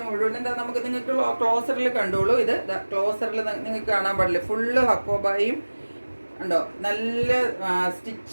മുഴുവൻ എന്താ നമുക്ക് നിങ്ങൾക്ക് ക്ലോസറിൽ കണ്ടോളൂ. ഇത് ക്ലോസറിൽ നിങ്ങൾക്ക് കാണാൻ പാടില്ല. ഫുള്ള് ഹക്കോബായും ഉണ്ടോ, നല്ല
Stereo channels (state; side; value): inverted; both; correlation -1.00